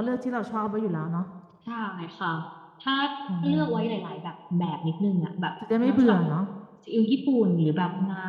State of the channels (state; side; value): identical; both; correlation 1.00